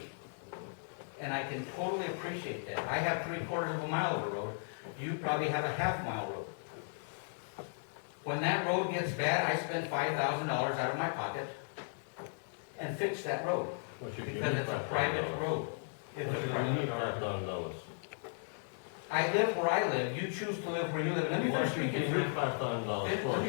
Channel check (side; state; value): right; silent; digital silence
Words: And I can totally appreciate that. I have 3/4 of a mile of a road. You probably have a half-mile road. When that road gets bad, I spend $5,000 out of my pocket and fix that road. Because it's a private road. It's a private road. I live where I live. You choose to live where you live. Let me finish speaking. Let me